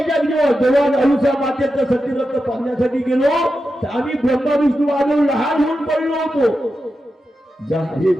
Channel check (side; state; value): both; normal; correlation 0.90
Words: जेव्हा अनुसया मातेचं सत्यव्रत पाहण्यासाठी गेलो तर आम्ही ब्रह्मा विष्णू महादेव लहान होऊन पडलो होतो. जा, हे